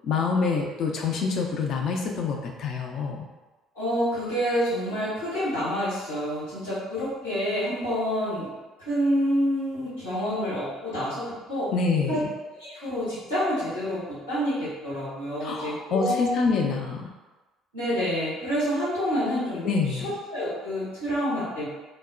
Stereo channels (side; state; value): both; normal; correlation 0.61